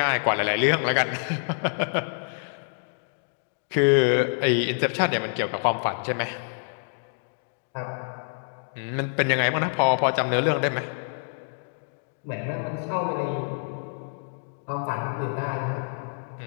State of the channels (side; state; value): right; silent; digital silence